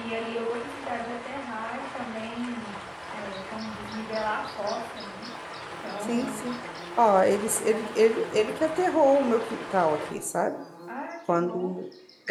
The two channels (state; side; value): identical; both; correlation 1.00